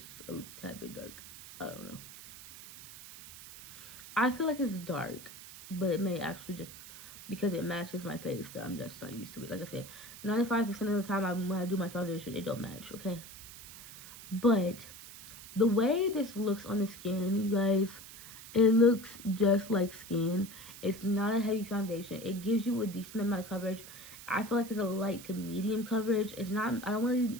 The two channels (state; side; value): noise; right; hiss, 15 dB below the sound